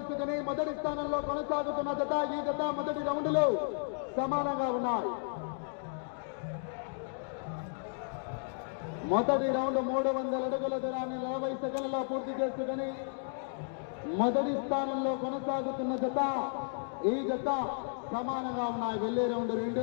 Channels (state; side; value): silent; right; digital silence